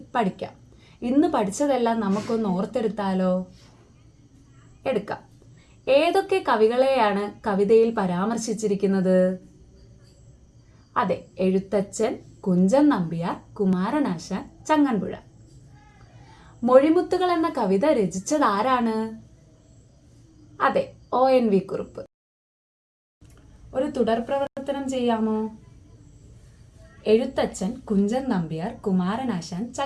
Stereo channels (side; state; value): both; identical; correlation 1.00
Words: പഠിക്കാം. ഇന്ന് പഠിച്ചതെല്ലാം നമുക്കൊന്ന് ഓർത്തെടുത്താലോ? എടുക്കാം. ഏതൊക്കെ കവികളെയാണ് കവിതയിൽ പരാമർശിച്ചിരിക്കുന്നത്? അതെ, എഴുത്തച്ഛൻ, കുഞ്ചൻ നമ്പ്യാർ, കുമാരനാശാൻ, ചങ്ങൻപുഴ. മൊഴിമുത്തുകൾ എന്ന കവിത രചിച്ചത് ആരാണ്? അതെ, ONV കുറുപ്പ്. ഒരു തുടർ പ്രവർത്തനം ചെയ്യാമോ? എഴുത്തച്ഛൻ, കുഞ്ചൻ നമ്പ്യാർ, കുമാരനാശാൻ,